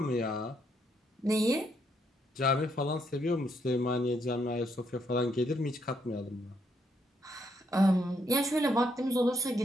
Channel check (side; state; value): both; normal; correlation 0.74